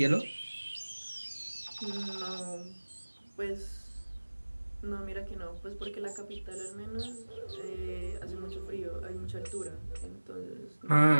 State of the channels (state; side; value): inverted; both; correlation -1.00